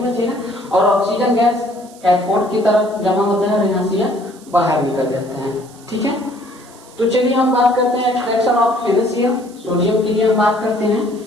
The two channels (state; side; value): noise; right; hiss, 24 dB below the sound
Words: और ऑक्सीजन गैस कैथोड की तरफ जमा होता है और यहाँ से यह बाहर निकल जाता है। ठीक है, तो चलिए हम बात करते हैं एक्सट्रैक्शन ऑफ NaCl। सोडियम के लिए हम बात करते हैं।